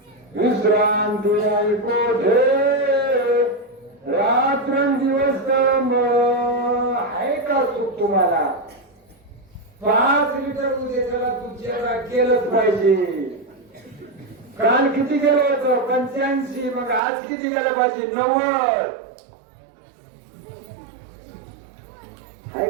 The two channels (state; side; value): drops out; left; at 17.0 s